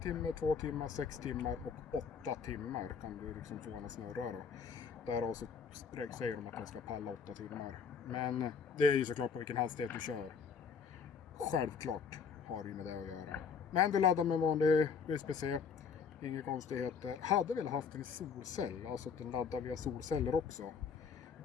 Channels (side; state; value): right; quieter; 6.1 dB